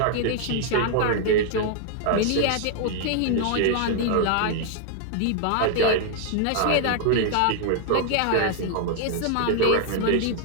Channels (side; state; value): both; different; correlation 0.00